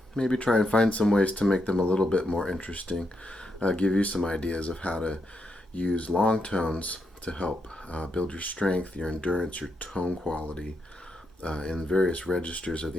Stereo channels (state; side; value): normal; both; correlation 0.81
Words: maybe try and find some ways to make them a little bit more interesting. Give you some ideas of how to use long tones to help build your strength, your endurance, your tone quality in various registers of